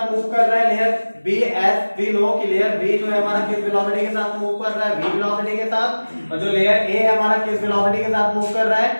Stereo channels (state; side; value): inverted; both; correlation -1.00